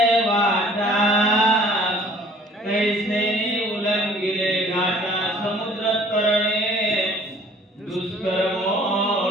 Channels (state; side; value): normal; both; correlation 0.53